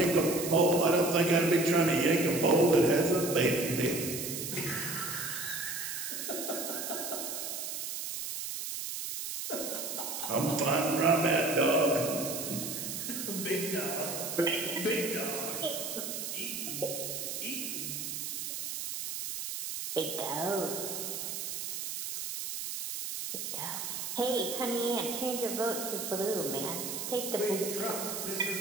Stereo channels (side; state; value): right; noise; hiss, 5 dB below the sound